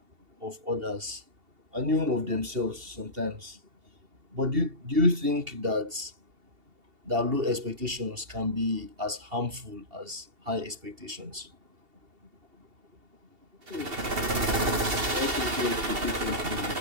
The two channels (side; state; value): left; late; 2.7 ms